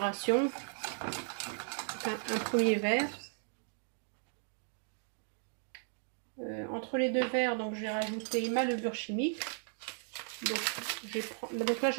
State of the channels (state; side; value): silent; left; 54 dB below the other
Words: Un premier verre. Entre les 2 verres, donc je vais rajouter ma levure chimique. Donc là